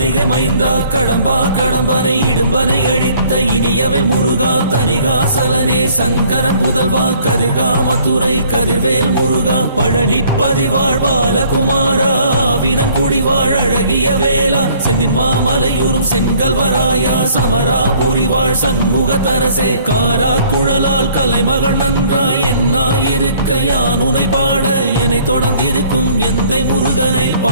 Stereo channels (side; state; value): both; inverted; correlation -0.59